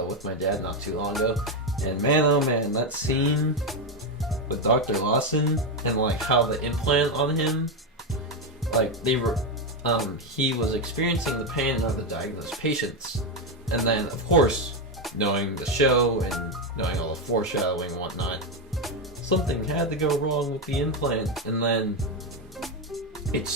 my dad not too long ago, and man, oh man, that scene with Dr. Lawson and like how the implant on him, like they were, he was experiencing the pain of the diagnosed patients, and then of course, knowing the show and knowing all the foreshadowing and whatnot, something had to go wrong with the implant, and then it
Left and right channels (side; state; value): both; normal; correlation 0.08